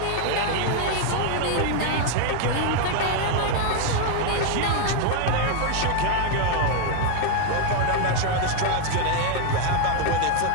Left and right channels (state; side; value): different; both; correlation 0.01